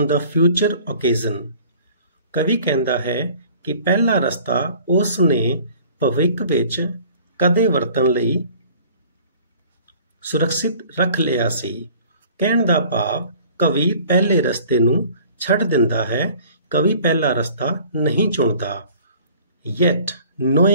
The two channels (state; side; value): inverted; both; correlation -0.50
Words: the future occasion. ਕਵੀ ਕਹਿੰਦਾ ਹੈ ਕਿ ਪਹਿਲਾ ਰਸਤਾ ਉਸ ਨੇ ਭਵਿੱਖ ਵਿੱਚ ਕਦੇ ਵਰਤਣ ਲਈ ਸੁਰੱਖਿਅਤ ਰੱਖ ਲਿਆ ਸੀ। ਕਹਿਣ ਦਾ ਭਾਵ ਕਵੀ ਪਹਿਲੇ ਰਸਤੇ ਨੂੰ ਛੱਡ ਦਿੰਦਾ ਹੈ, ਕਵੀ ਪਹਿਲਾ ਰਸਤਾ ਨਹੀਂ ਚੁਣਦਾ। Yet